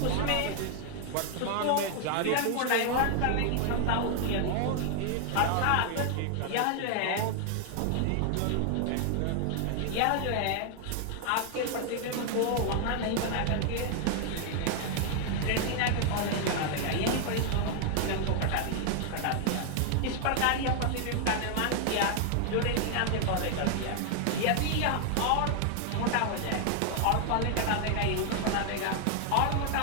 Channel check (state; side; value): different; both; correlation 0.00